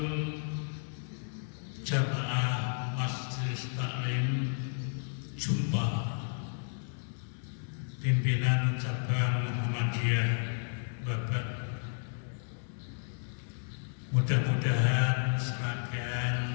jamaah Majelis Taklim Jumpa pimpinan cabang Muhammadiyah Bapak, mudah-mudahan serangkaian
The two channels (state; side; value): silent; right; digital silence